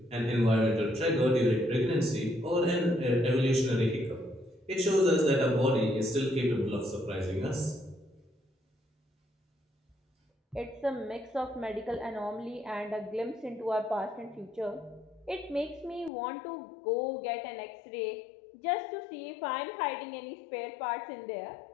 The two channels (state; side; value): drops out; right; at 16.1 s